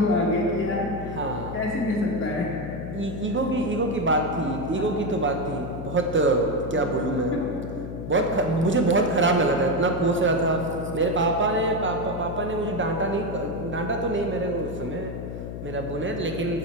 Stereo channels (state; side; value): noise; left; hum, 7 dB below the sound